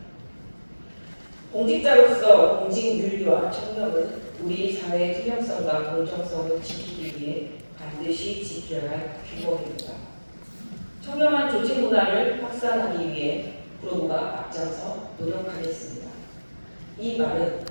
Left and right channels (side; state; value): both; inverted; correlation -1.00